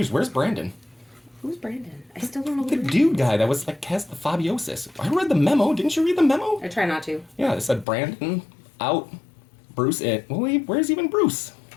Where's Brandon? Who's Brandon? I still don't know who The Brandon is. dude guy that was like has the fabiosis. I read the memo. Didn't you read the memo? I try not to. Yeah, it said Brandon out, Bruce in. Well, wait, where's even Bruce?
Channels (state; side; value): drops out; right; at 7.9 s